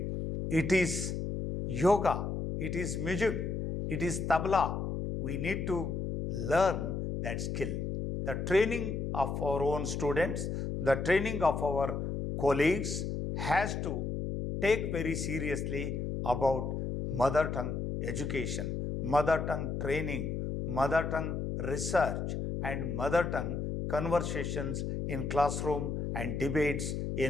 It is yoga. It is music. It is tabla. We need to learn that skill. The training of our own students, the training of our colleagues has to take very seriously about mother tongue education, mother tongue training, mother tongue research, and mother tongue conversations in classroom and debates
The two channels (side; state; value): left; noise; hum, 2 dB below the sound